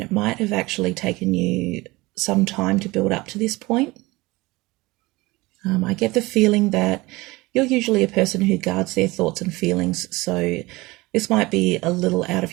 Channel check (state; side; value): quieter; left; 21.7 dB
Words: might have actually taken you some time to build up to this point. I get the feeling that you're usually a person who guards their thoughts and feelings, so this might be a little out